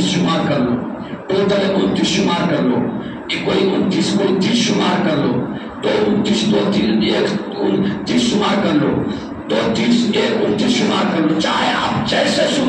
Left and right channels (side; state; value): both; identical; correlation 1.00